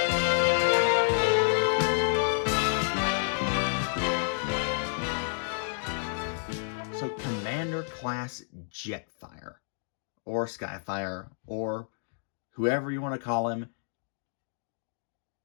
course, Jetfire, or Skyfire, or whoever you want to call him.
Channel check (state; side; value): silent; right; digital silence